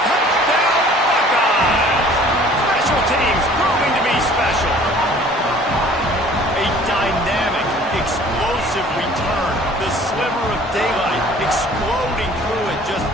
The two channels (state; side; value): normal; both; correlation 0.51